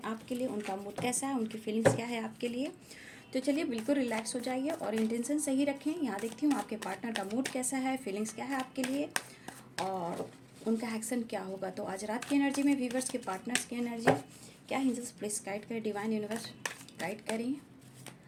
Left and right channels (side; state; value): both; identical; correlation 1.00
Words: आपके लिए, उनका मूड कैसा है, उनकी फीलिंग्स क्या है आपके लिए। तो चलिए बिल्कुल रिलैक्स हो जाइए और इंटेंशन सही रखें। यहाँ देखती हूँ आपके पार्टनर का मूड कैसा है, फीलिंग्स क्या है आपके लिए और उनका एक्शन क्या होगा। तो आज रात की एनर्जी में व्यूवर्स के पार्टनर्स की एनर्जी क्या, एंजल्स प्लीज गाइड करें, डिवाइन यूनिवर्स गाइड करें।